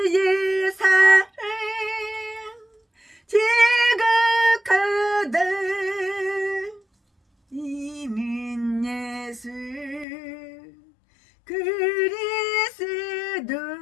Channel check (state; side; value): drops out; right; at 10.1 s